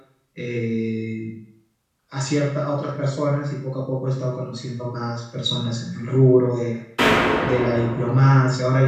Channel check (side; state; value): both; identical; correlation 1.00